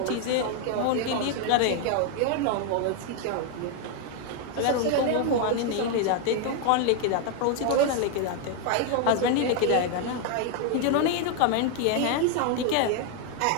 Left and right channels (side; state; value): both; different; correlation 0.01